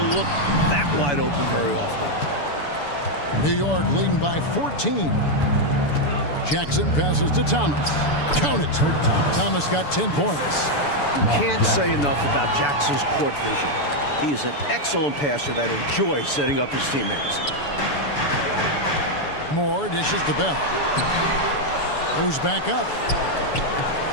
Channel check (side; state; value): right; late; 6.9 ms